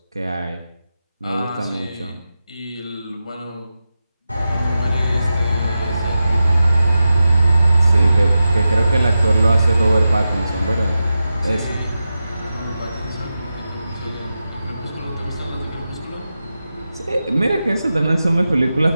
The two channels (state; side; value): inverted; both; correlation -0.91